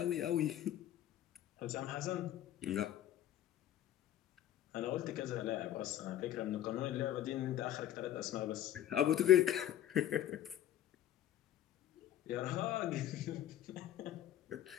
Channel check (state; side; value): quieter; right; 12.0 dB